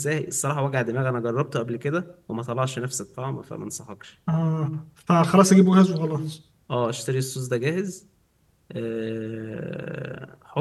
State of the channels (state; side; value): identical; both; correlation 1.00